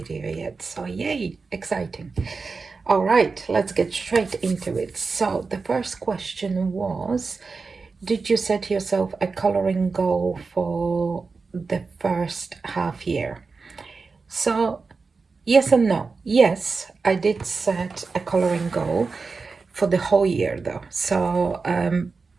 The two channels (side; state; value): left; quieter; 4.4 dB